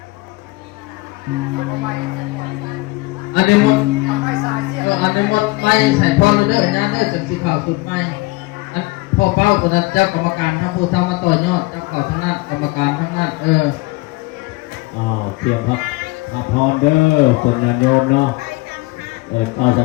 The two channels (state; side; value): quieter; right; 22.9 dB